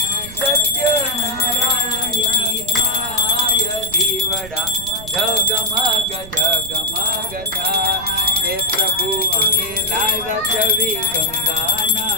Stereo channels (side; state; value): right; noise; rumble, 15 dB below the sound